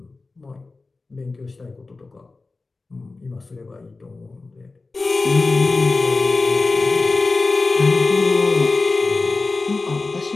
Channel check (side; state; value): right; quieter; 3.7 dB